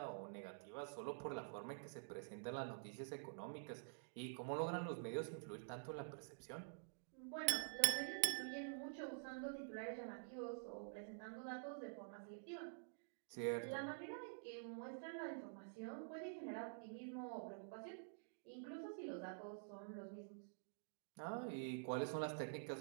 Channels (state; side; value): silent; left; digital silence